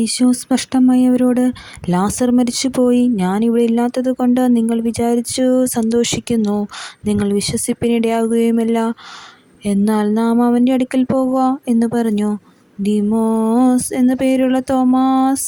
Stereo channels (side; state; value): both; identical; correlation 1.00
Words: സ്പഷ്ടമായി അവരോട്, ലാസർ മരിച്ചുപോയി. ഞാനിവിടെ ഇല്ലാത്തത് കൊണ്ട് നിങ്ങൾ വിചാരിച്ചു സന്തോഷിക്കുന്നു. നിങ്ങൾ വിശ്വസിപ്പിനിടയാകുകയുമില്ല. എന്നാൽ നാം അവൻ്റെ അടുക്കൽ പോകുക എന്ന് പറഞ്ഞു. ദീമോസ് എന്നു പേരുള്ള